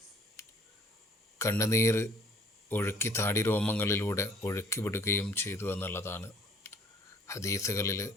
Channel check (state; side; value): normal; both; correlation 0.57